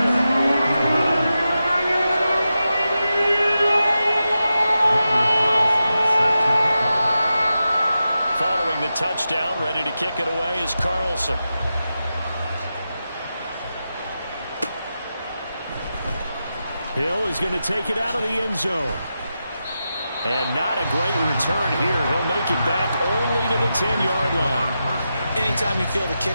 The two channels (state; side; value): inverted; both; correlation -0.90